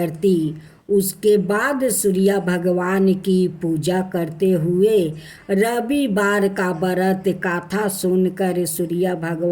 उसके बाद सूर्य भगवान की पूजा करते हुए रविवार का व्रत कथा सुनकर सूर्य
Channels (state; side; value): identical; both; correlation 1.00